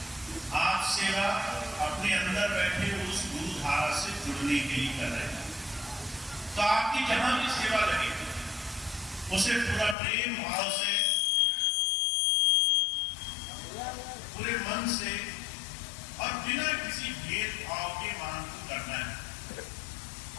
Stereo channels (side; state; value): right; drops out; at 10.0 s